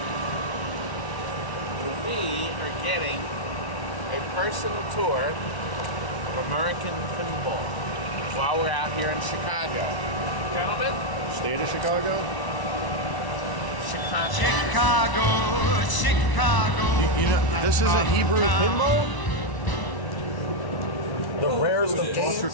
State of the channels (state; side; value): late; right; 1.0 ms